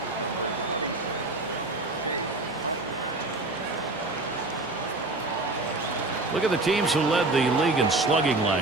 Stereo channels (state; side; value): quieter; left; 3.0 dB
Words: Look at the teams who led the league in slugging